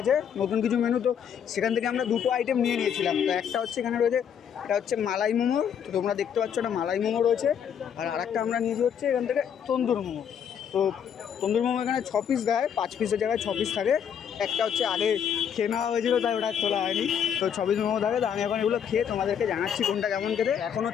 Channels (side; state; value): right; quieter; 8.2 dB